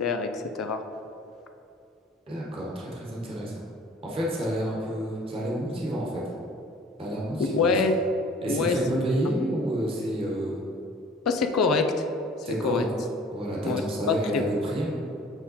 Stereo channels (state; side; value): normal; both; correlation 0.50